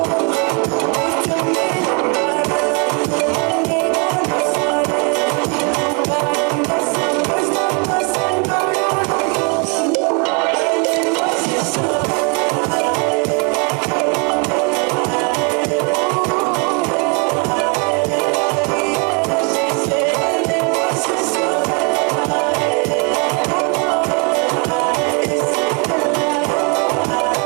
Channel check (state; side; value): quieter; left; 34.5 dB